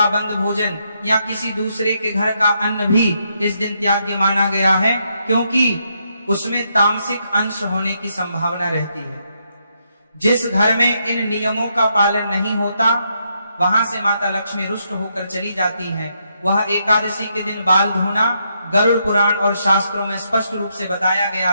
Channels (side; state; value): both; inverted; correlation -0.78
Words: बंद भोजन या किसी दूसरे के घर का अन्न भी इस दिन त्याग्य माना गया है, क्योंकि उसमें तामसिक अंश होने की संभावना रहती है। जिस घर में इन नियमों का पालन नहीं होता, वहां से माता लक्ष्मी रुष्ट होकर चली जाती हैं। वह एकादशी के दिन बाल धोना गरुड़ पुराण और शास्त्रों में स्पष्ट रूप से बताया गया